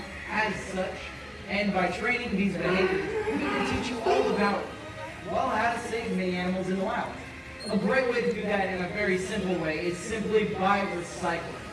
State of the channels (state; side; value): identical; both; correlation 1.00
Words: as such, and by training these behaviors, we can teach you all about, well, how to save many animals in the wild. A great way to do that in a very simple way is simply by recycling.